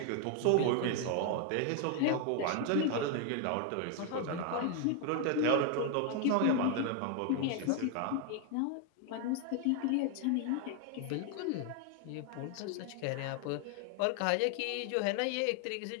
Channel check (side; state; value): both; different; correlation 0.01